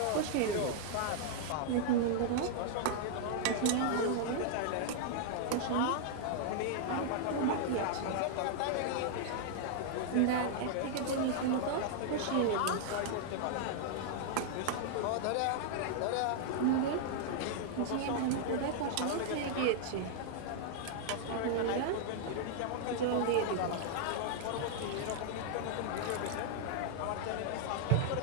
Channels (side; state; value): both; different; correlation -0.01